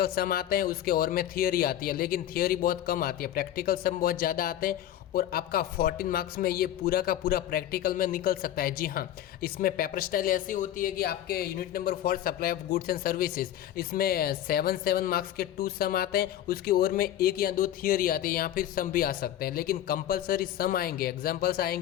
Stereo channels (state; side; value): quieter; right; 12.0 dB